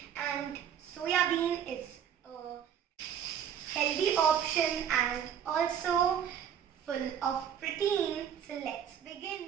and soyabean is a healthy option and also full of protein. So let's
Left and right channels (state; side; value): quieter; left; 9.0 dB